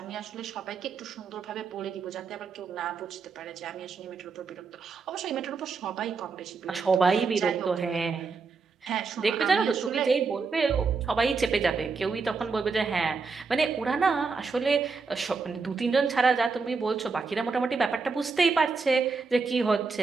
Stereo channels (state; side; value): quieter; left; 4.7 dB